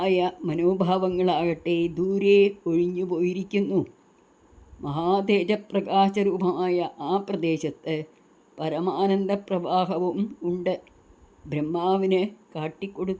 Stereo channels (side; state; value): both; identical; correlation 1.00